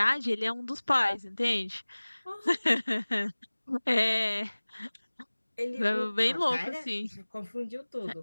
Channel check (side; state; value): both; inverted; correlation -1.00